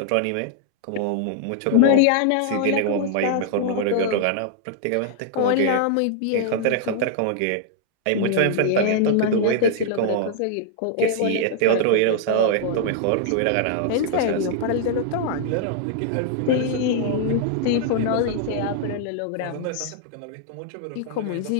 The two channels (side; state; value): both; different; correlation -0.01